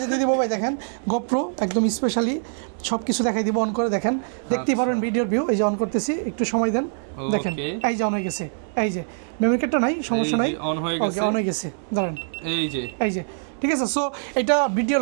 দিয়ে দিব ভাই। দেখেন GoPro একদম স্পেশালি সবকিছু দেখাই দিব, অন করে দেখেন, দেখতেই পারেন ভিডিওর ভিউ। এই যে অন করতেছি, একটু সময় দেন, দেখেন এই যে অন হয়ে গেছে। এই যে মেমরি কার্ডটা নাই, সমস্যা নাই, অন হয়ে গেছে, অন হয়ে গেছে, দাঁড়ান এই যে ঠিক আছে। সো এটা ভিডিও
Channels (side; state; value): left; silent; digital silence